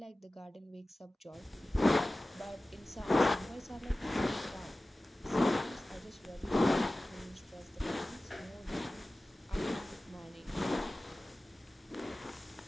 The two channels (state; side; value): normal; both; correlation 0.97